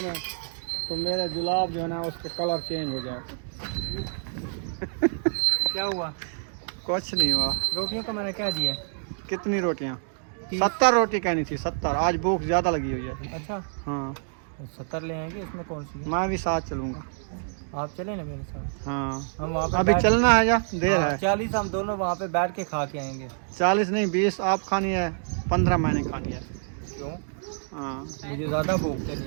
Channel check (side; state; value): left; silent; digital silence